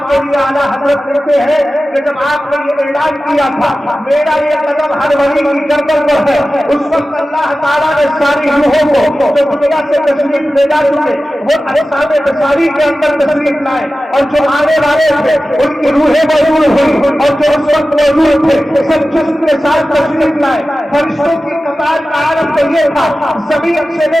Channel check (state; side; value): normal; both; correlation 0.94